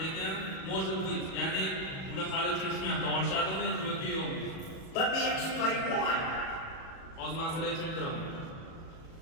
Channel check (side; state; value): right; late; 37 ms